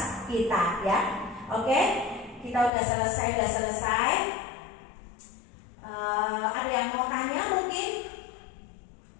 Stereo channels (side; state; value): right; drops out; at 2.7 s